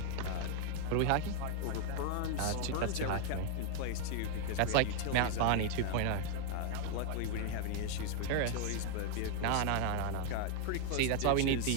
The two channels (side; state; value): both; different; correlation 0.00